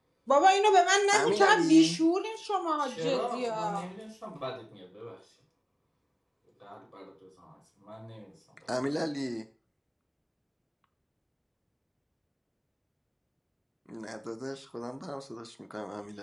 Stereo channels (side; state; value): both; identical; correlation 1.00